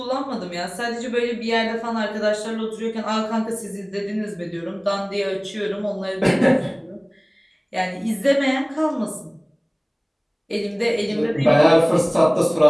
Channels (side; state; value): both; identical; correlation 1.00